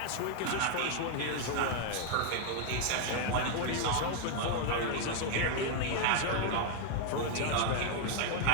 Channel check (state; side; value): different; both; correlation 0.00